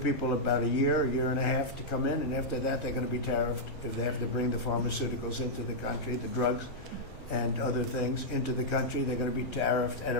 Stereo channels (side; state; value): both; normal; correlation -0.06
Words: people about a year and a half to come in, and after that they're going to be tariffed if they have to bring the pharmaceuticals into the country, the drugs and other things into the country. They're going to be tariffed at a